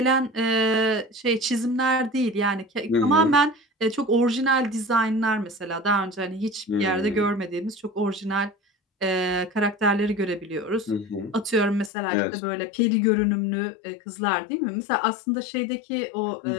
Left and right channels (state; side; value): drops out; right; at 11.9 s